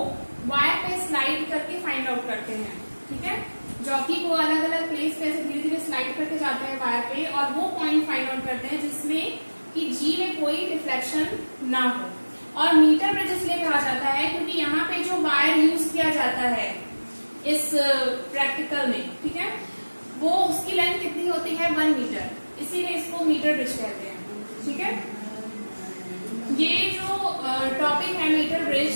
वायर पे स्लाइड करके फाइंड आउट करते हैं। ठीक है, जॉकी को अलग अलग प्लेस पे ऐसे धीरे धीरे स्लाइड करके जाते हैं वायर पे, और वो पॉइंट फाइंड आउट करते हैं जिसमें कि जी में कोई डिफ्लेक्शन ना हो। और मीटर ब्रिज इसलिए कहा जाता है क्योंकि यहाँ पे जो वायर यूज किया जाता है इस प्रैक्टिकल में, ठीक है, वो उसकी लेंथ कितनी होती है, 1 मीटर, इसीलिए इसको मीटर ब्रिज कहते हैं। ठीक है, ये जो टॉपिक है मीटर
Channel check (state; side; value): inverted; both; correlation -1.00